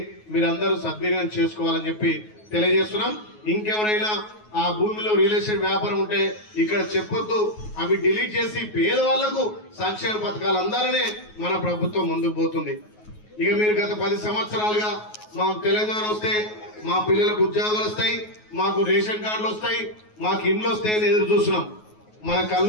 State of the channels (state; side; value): late; right; 9.4 ms